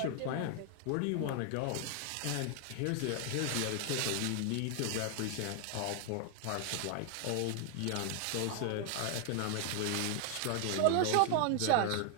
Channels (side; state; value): both; different; correlation 0.00